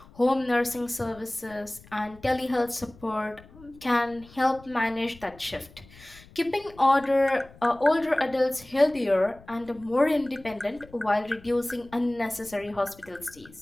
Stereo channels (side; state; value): left; noise; rumble, 23 dB below the sound